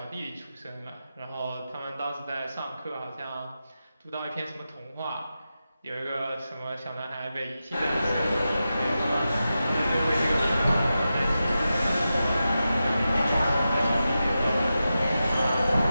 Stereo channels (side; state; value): both; inverted; correlation -0.91